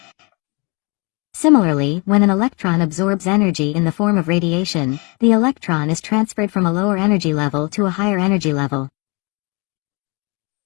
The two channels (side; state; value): right; quieter; 28.6 dB